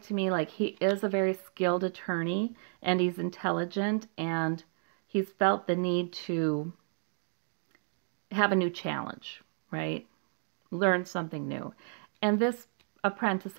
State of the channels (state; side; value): silent; left; digital silence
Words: to me like he is a very skilled attorney and he's intelligent and he's felt the need to have a new challenge, right? Learn something new. And this apprentice